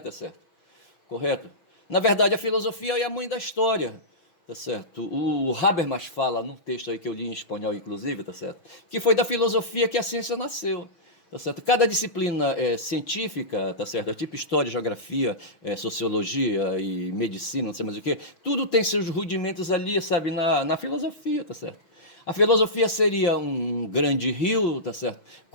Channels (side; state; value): right; late; 6.1 ms